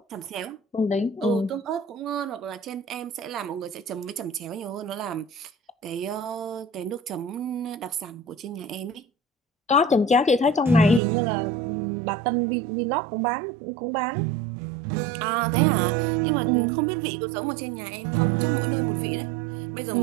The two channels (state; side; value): drops out; left; at 11.0 s